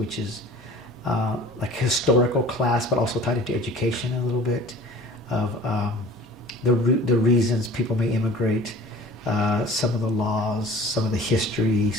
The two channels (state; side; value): normal; both; correlation 0.44